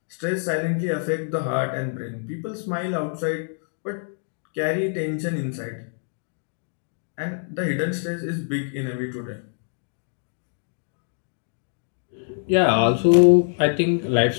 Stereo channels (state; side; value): silent; right; 62 dB below the other